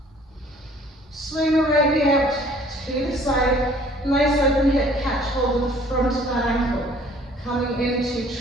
Swing the right knee out to the side. Nice open hip catch, hold in the front of that ankle. Coming into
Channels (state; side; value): normal; both; correlation 0.55